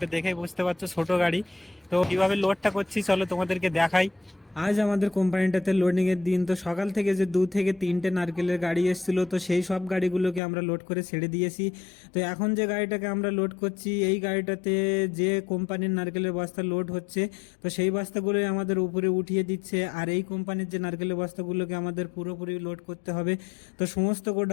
দেখেই বুঝতে পারছো ছোট গাড়ি। তো কিভাবে লোডটা করছি চলো তোমাদেরকে দেখাই। আজ আমাদের কোম্পানিটাতে লোডিং এর দিন। তো সকাল থেকে যে 2 থেকে 3টে নারকেলের গাড়ি এসেছিল, তো সেই সব গাড়িগুলোকে আমরা লোড করে ছেড়ে দিয়েছি। তো এখন যে গাড়িটাকে আমরা লোড করছি, এই গাড়িটাতে যে কোম্পানির নারকেলের বস্তা লোড হচ্ছে, তো সেই বস্তাগুলোই আমাদের উপরে উঠিয়ে দিচ্ছে। আর এই কোম্পানির যে নারকেলের বস্তাগুলোকে আমাদের পুরোপুরি লোড করতে হবে। তো সমস্ত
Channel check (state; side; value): drops out; right; at 10.4 s